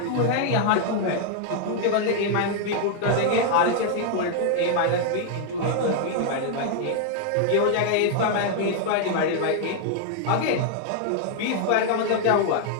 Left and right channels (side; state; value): both; different; correlation 0.00